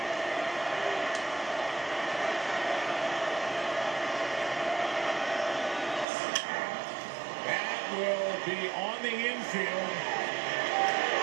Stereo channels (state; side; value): drops out; left; at 6.1 s